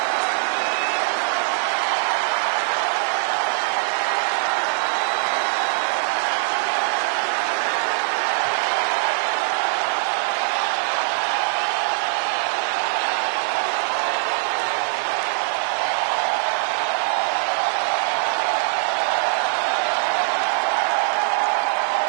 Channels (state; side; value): silent; left; digital silence